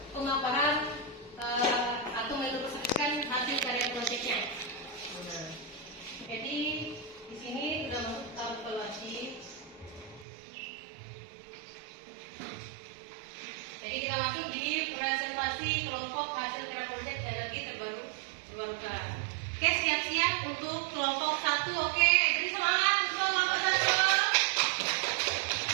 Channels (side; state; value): left; drops out; at 10.2 s